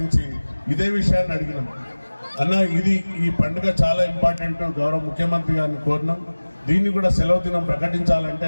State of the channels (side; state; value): both; inverted; correlation -1.00